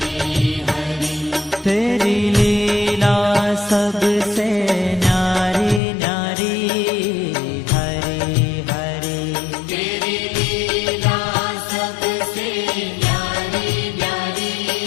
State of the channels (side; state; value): right; drops out; at 5.8 s